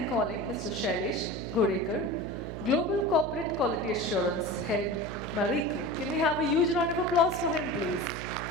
calling Mr. Shailesh Ghodekar, Global Corporate Quality Assurance Head, Marico. Can we have a huge round of applause for him, please?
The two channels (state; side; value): noise; right; hum, 7 dB below the sound